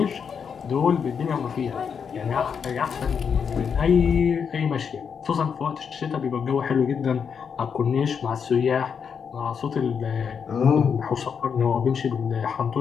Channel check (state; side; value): quieter; right; 6.7 dB